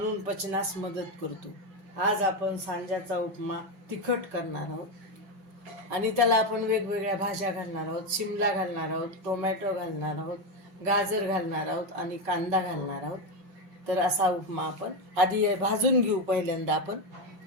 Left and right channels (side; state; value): left; late; 5.3 ms